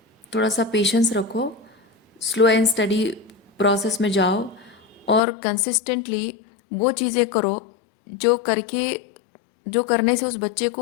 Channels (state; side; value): drops out; right; at 5.2 s